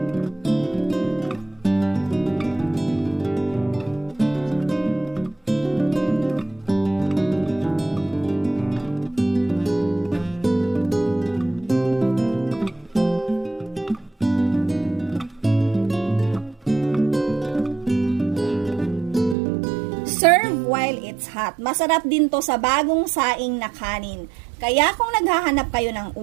Serve while it's hot. Masarap din to sa bagong saing na kanin. Kaya kung naghahanap kayo ng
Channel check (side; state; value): left; drops out; at 19.4 s